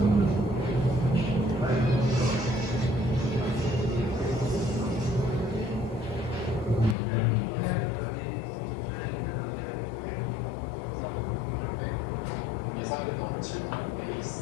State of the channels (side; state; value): right; drops out; at 7.0 s